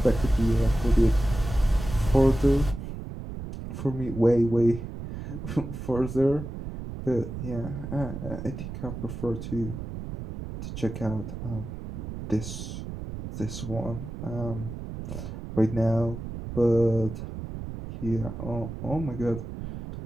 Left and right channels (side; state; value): right; noise; rumble, 8 dB below the sound